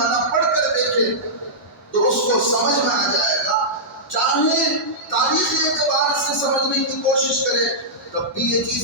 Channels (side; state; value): both; normal; correlation -0.13